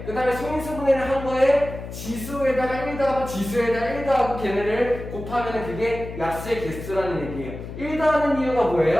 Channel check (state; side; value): noise; left; hum, 10 dB below the sound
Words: 그 다음에 소인수 분해를 한 거에 지수에다가 1 더하고 지수에다가 1 더하고 걔네를 곱하면 그게 약수의 개수라는 얘기예요. 1 더하는 이유가